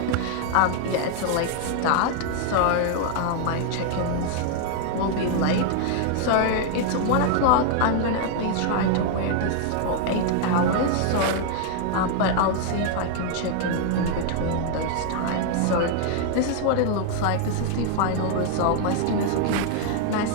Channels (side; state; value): both; different; correlation 0.00